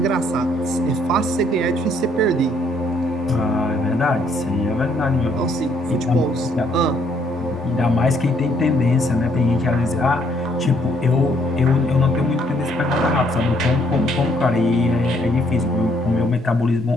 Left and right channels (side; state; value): both; normal; correlation 0.67